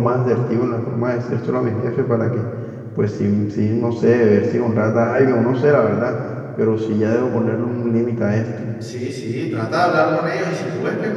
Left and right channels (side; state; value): both; identical; correlation 1.00